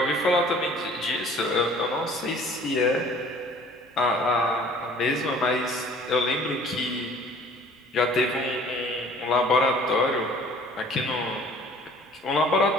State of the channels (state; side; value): normal; both; correlation 0.51